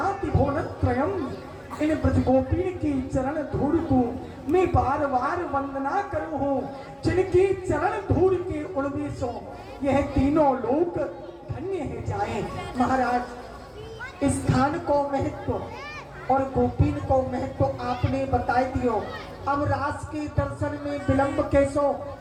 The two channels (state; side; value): identical; both; correlation 1.00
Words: भुवनत्रयम। इन ब्रजगोपीन की चरण धूल को मैं बार बार वंदना करूं हूँ, जिनकी चरण धूल के उड़वेशों यह तीनों लोक धन्य है जाए। महाराज, इस स्थान को महत्व और गोपीन को महत्व आपने बताई दियो। अब रास के दर्शन में विलंब कैसो,